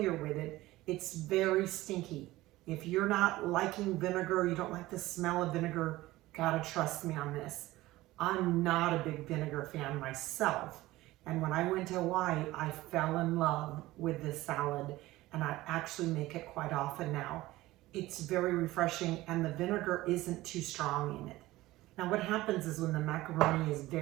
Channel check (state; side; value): quieter; left; 17.7 dB